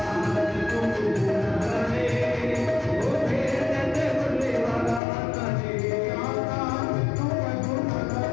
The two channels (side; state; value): right; drops out; at 5.0 s